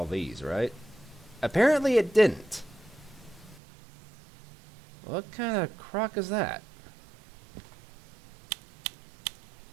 these, right? Apparently it didn't. What kind of crock is that?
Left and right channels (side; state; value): left; drops out; at 3.6 s